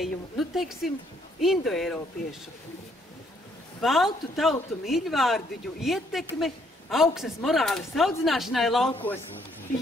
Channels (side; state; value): both; normal; correlation 0.68